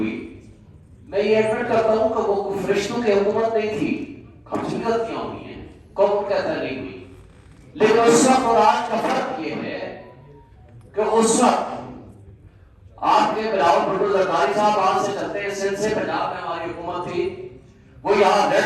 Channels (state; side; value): identical; both; correlation 1.00